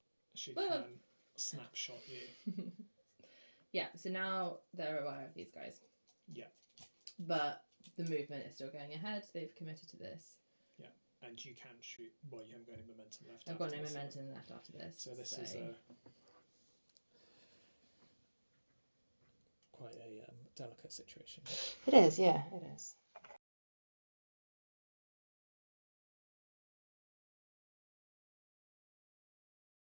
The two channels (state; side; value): inverted; both; correlation -1.00